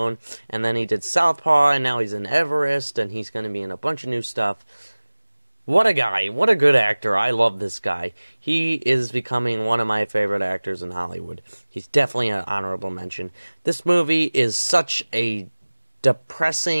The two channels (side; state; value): both; inverted; correlation -1.00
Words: And then he did Southpaw, and now he's in Everest, and he's going to be in a bunch of new stuff. What a guy. What a good actor. I love this guy. He is becoming one of my favorite actors in Hollywood. He's definitely an honorable mention. This movie is such a